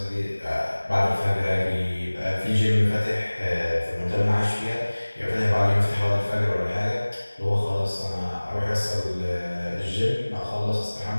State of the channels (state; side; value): inverted; both; correlation -1.00